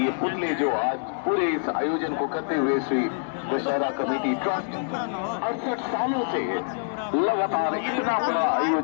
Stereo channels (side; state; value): right; silent; digital silence